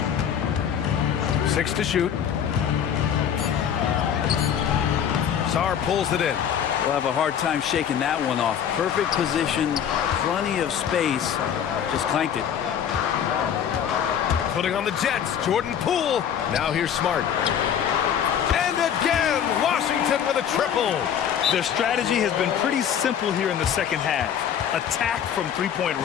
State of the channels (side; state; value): right; quieter; 8.8 dB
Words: 6 to shoot. Sarr pulls it in. We'll have a hard time shaking that one off. Perfect position, plenty of space. Just clanked it. Putting on the Jets, Jordan Poole. Now here's Smart. And again, Washington with a triple. Their strategy has been pretty simple here in the second half. Attack from three-point